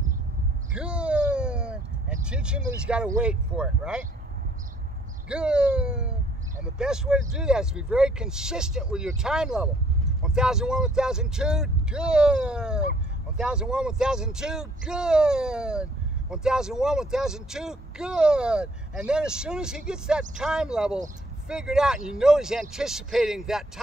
Good. And teach him that he's got to wait for it, right? Good. And the best way to do that is to be very consistent with your time level. 1001, 1002, good. 1001, 1002, good. 1001, 1002, good. And then as soon as he gets that time level figured out and you know he's anticipating that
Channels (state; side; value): normal; both; correlation 0.63